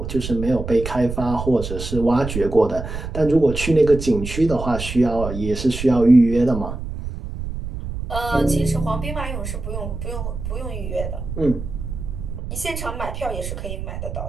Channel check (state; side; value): noise; right; rumble, 7 dB below the sound